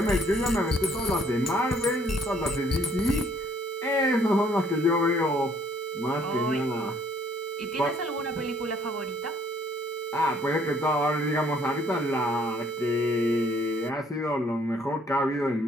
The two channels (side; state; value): both; normal; correlation 0.63